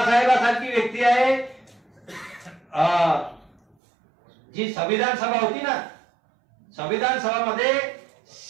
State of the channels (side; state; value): left; drops out; at 3.8 s